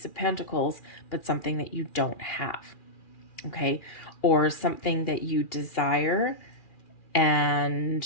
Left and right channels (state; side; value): late; right; 2.4 ms